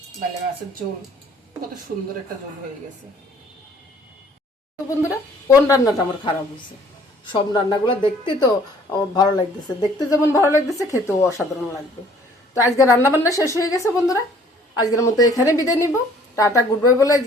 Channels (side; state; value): both; normal; correlation 0.57